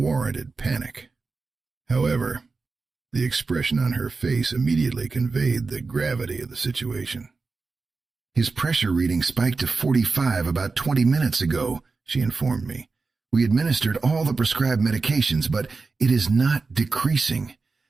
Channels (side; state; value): left; quieter; 4.2 dB